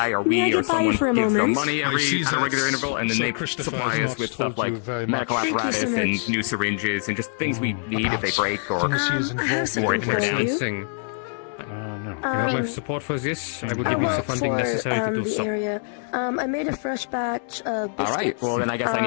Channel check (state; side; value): silent; right; 62 dB below the other